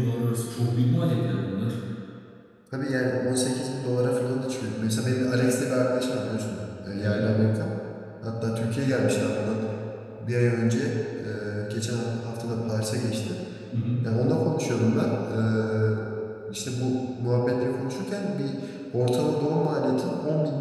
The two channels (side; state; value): both; identical; correlation 1.00